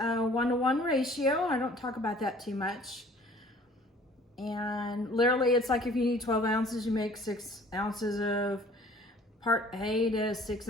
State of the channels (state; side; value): normal; both; correlation 0.52